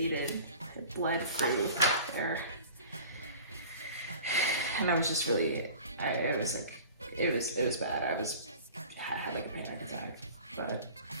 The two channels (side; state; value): both; inverted; correlation -0.43